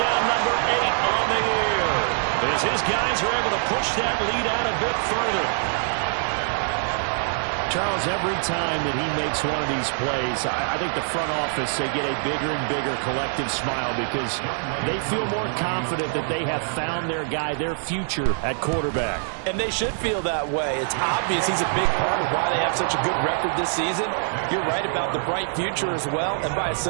number 8 on the year, as his guys are able to push that lead out a bit further. Charles, every time that he makes one of these plays, I think the front office, they get a bigger and bigger collective smile because they feel more confident that they have found their guy, their future at quarterback. And they should feel that way. It's obvious he's a big part of why they have such a good record this season. You're right about the bright future as well, and by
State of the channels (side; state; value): left; silent; digital silence